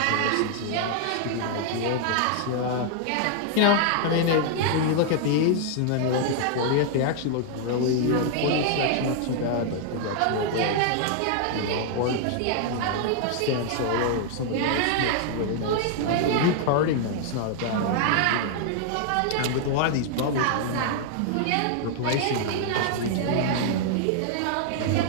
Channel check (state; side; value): different; both; correlation 0.00